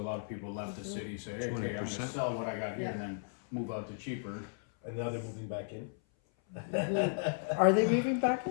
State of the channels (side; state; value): right; silent; 54 dB below the other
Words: of people left the city, say, hey, okay, I'm 20%. gonna sell what I got here and then move out to cheaper. And now they're moving back in. Are they moving back?